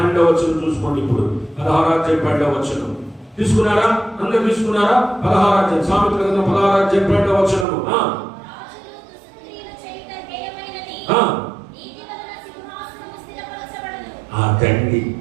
వచనం చూసుకోండి. ఇప్పుడు 16వ అధ్యాయం 12వ వచనం తీసుకున్నారా? అందరూ తీసుకున్నారా? 16వ అధ్యాయం సామెతల గ్రంథం 16వ అధ్యాయం 12వ వచనము. తండ్రి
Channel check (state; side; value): drops out; left; at 7.7 s